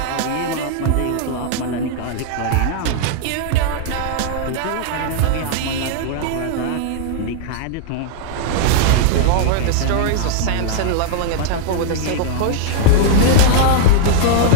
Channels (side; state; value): both; different; correlation -0.01